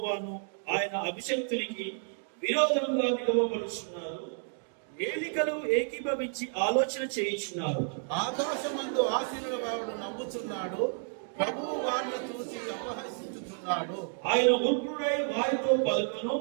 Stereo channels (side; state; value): left; silent; 57 dB below the other